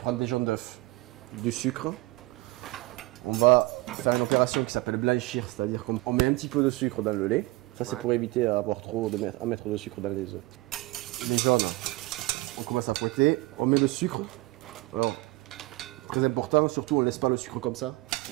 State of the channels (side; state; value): left; quieter; 21.6 dB